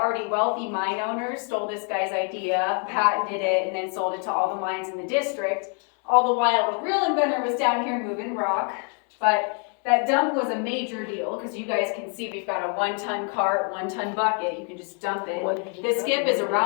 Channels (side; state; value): right; quieter; 39.3 dB